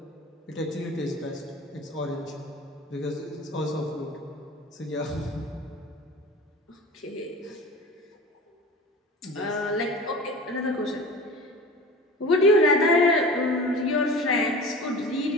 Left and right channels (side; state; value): both; normal; correlation 0.38